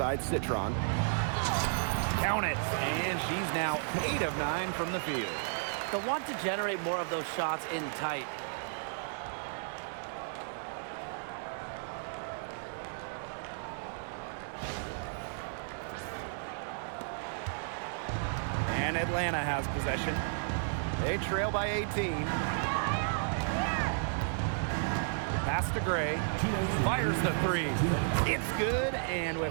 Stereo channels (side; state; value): left; silent; digital silence